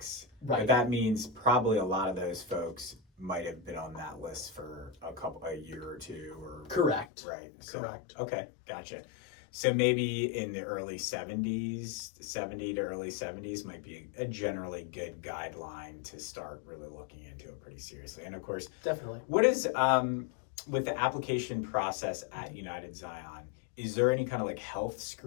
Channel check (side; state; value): right; drops out; at 7.1 s